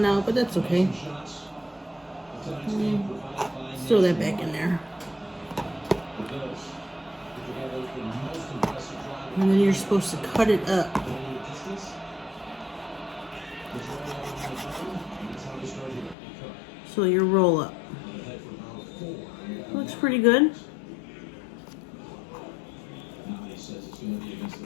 out, but that's okay. Let's throw that back in there. And then you're supposed to cut it up. So your roll up. Looks pretty good.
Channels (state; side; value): drops out; right; at 16.2 s